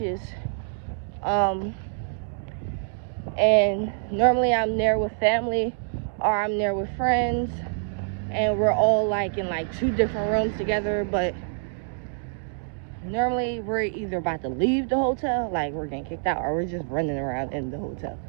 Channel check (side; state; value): left; silent; digital silence